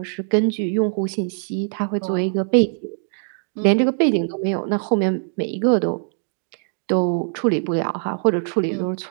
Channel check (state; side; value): silent; left; digital silence